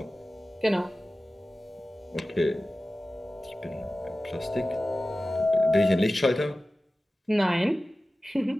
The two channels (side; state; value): both; normal; correlation 0.96